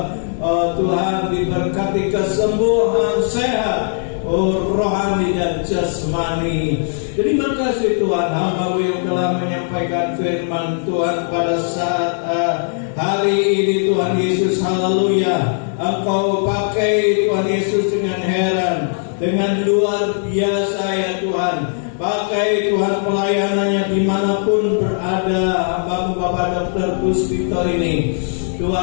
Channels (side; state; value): right; silent; digital silence